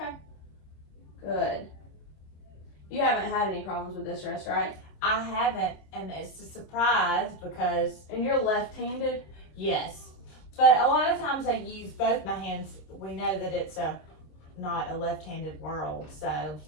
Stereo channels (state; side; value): late; right; 26 ms